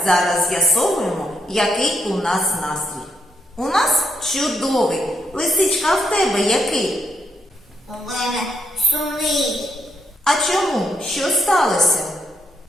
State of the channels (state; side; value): normal; both; correlation 0.77